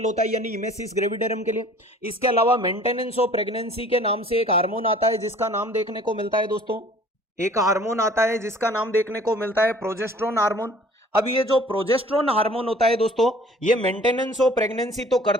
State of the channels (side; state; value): both; normal; correlation 0.51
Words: होता है, यानी इमेसिस ग्रेविडेरम के लिए। इसके अलावा मेंटेनेंस ऑफ प्रेगनेंसी के नाम से एक हार्मोन आता है जिसका नाम देखने को मिलता है दोस्तों, एक हार्मोन आता है जिसका नाम देखने को मिलता है प्रोजेस्टेरोन हार्मोन। अब ये जो प्रोजेस्टेरोन हार्मोन होता है दोस्तों, ये मेंटेनेंस ऑफ प्रेगनेंसी तो